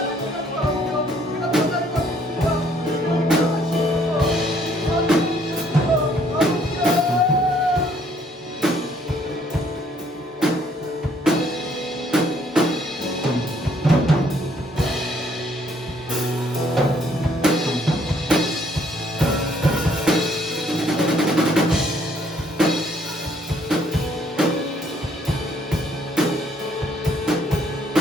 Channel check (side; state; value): both; normal; correlation 0.65